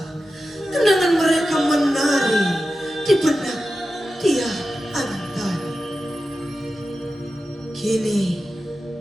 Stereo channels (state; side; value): normal; both; correlation 0.92